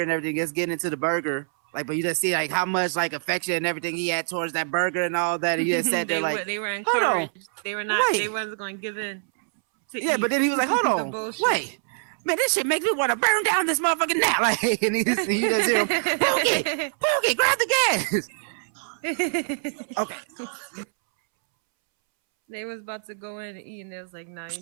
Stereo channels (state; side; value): silent; left; 62 dB below the other